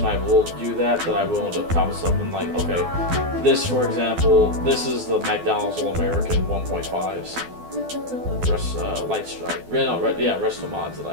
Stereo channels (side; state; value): left; late; 12 ms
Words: when I will do that I will end up copying something like, okay, this, for example, this is the McDonald's All-American 1.5s. Light strike. Resto mods that